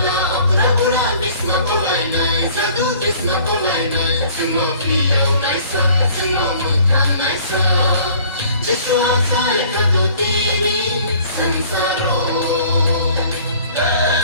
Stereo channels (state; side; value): inverted; both; correlation -0.53